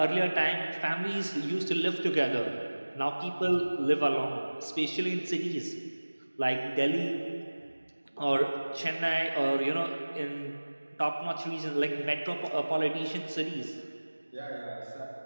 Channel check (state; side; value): inverted; both; correlation -1.00